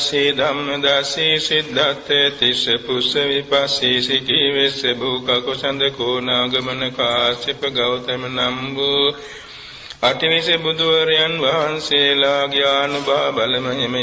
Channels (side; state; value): both; identical; correlation 1.00